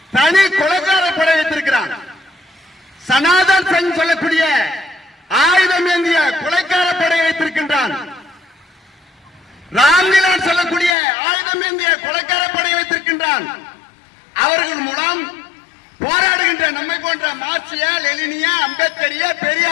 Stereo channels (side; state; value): right; drops out; at 11.0 s